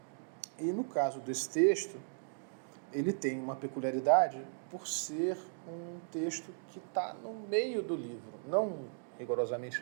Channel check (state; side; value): silent; left; digital silence